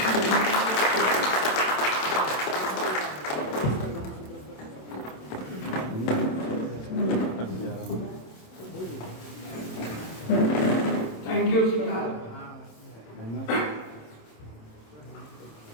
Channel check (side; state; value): right; late; 27 ms